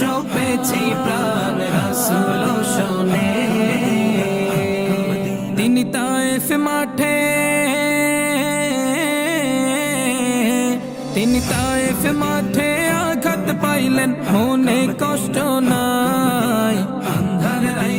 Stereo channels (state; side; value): identical; both; correlation 1.00